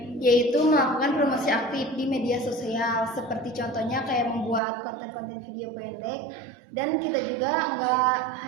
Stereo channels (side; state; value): left; drops out; at 4.6 s